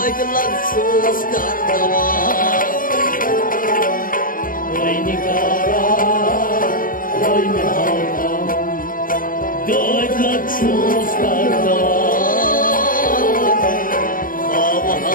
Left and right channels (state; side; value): late; right; 0.40 ms